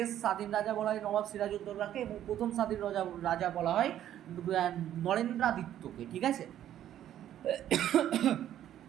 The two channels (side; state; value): left; quieter; 11.5 dB